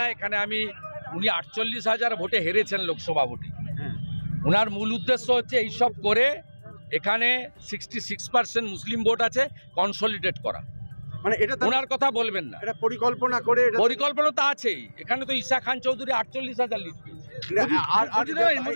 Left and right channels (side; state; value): both; inverted; correlation -1.00